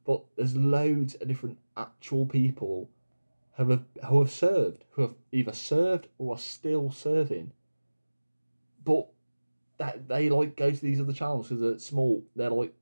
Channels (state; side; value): inverted; both; correlation -1.00